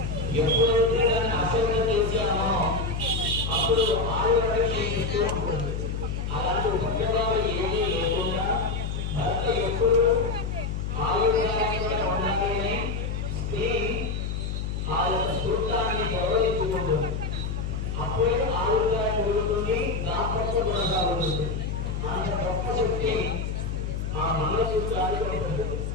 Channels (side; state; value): left; noise; hum, 3 dB below the sound